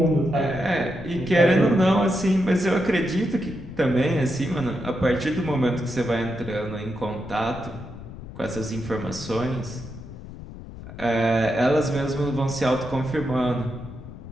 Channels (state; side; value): noise; left; rumble, 13 dB below the sound